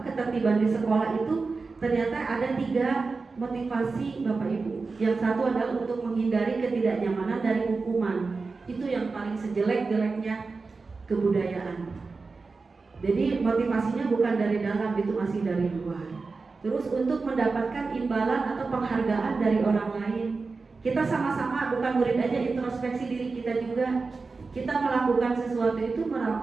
ketertiban di sekolah itu ternyata ada 3 motivasi Bapak Ibu. Yang satu adalah untuk menghindari ketidaknyamanan dari hukuman. Itu yang paling sejelek-jeleknya kebudayaan. Jadi motivasinya bukan dari dalam, itu masih dari luar. Terus untuk mendapatkan imbalan atau penghargaan dari orang lain. Kita sama-sama, bukan murid aja, introspeksi diri kita juga. Kita melakukan sesuatu itu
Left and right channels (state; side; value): quieter; left; 4.2 dB